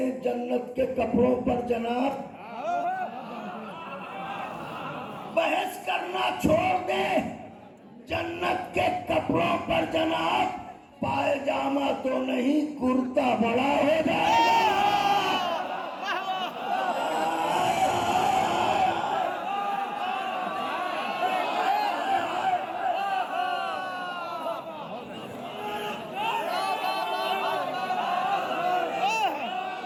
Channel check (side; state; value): both; identical; correlation 1.00